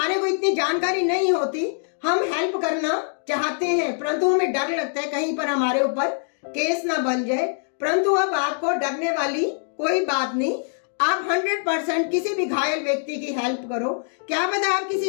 को इतनी जानकारी नहीं होती, हम हेल्प करना चाहते हैं, परंतु हमें डर लगता है कहीं पर हमारे ऊपर केस ना बन जाए। परंतु अब आपको डरने वाली कोई बात नहीं। आप 100% किसी भी घायल व्यक्ति की हेल्प करो। क्या पता आप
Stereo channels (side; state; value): right; silent; 63 dB below the other